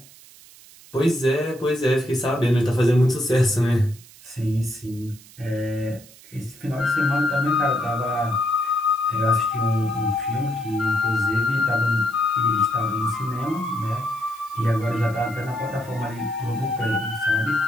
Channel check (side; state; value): right; noise; hiss, 22 dB below the sound